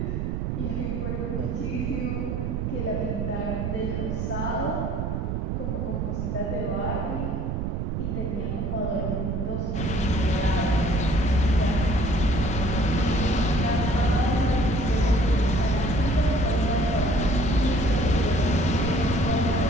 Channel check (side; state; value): right; noise; rumble, 1 dB below the sound